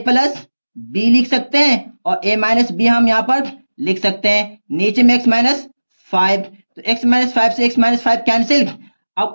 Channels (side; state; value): both; inverted; correlation -1.00